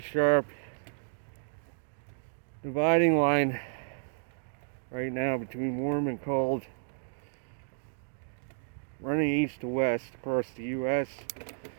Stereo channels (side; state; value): left; silent; digital silence